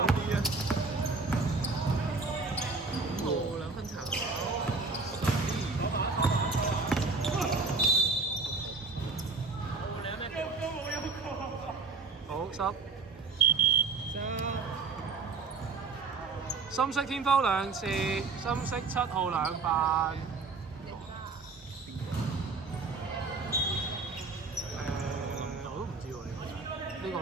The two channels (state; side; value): quieter; left; 4.2 dB